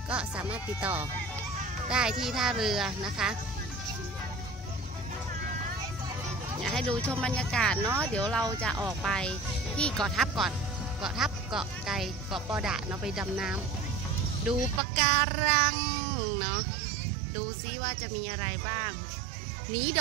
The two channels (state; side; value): drops out; left; at 14.8 s